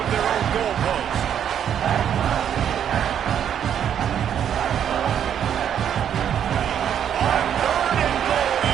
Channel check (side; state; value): left; quieter; 9.1 dB